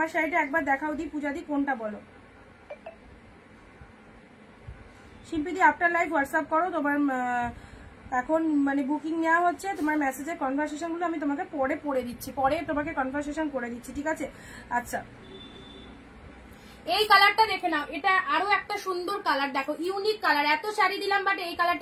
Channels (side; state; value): both; identical; correlation 1.00